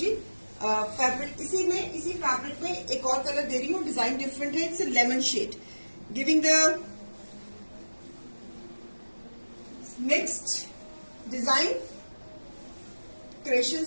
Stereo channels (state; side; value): inverted; both; correlation -1.00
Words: fabric इसी fabric में एक और colour दे रही हूँ, डिजाइन डिफरेंट है। It's lemon shade, giving the next design